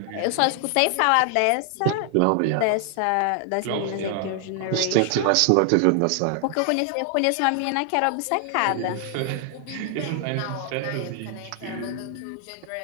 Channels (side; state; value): both; different; correlation 0.00